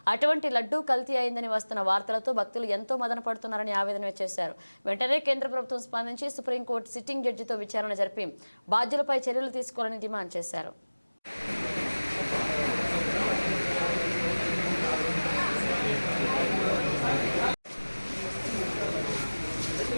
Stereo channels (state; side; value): inverted; both; correlation -1.00